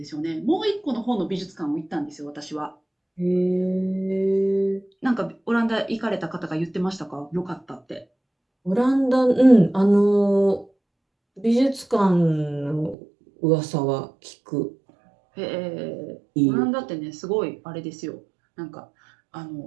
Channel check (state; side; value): drops out; left; at 13.0 s